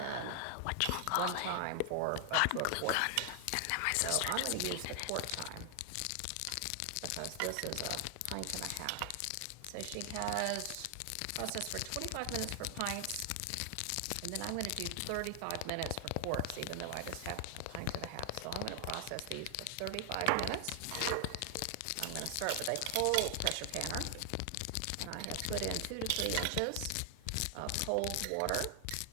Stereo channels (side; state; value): both; different; correlation 0.00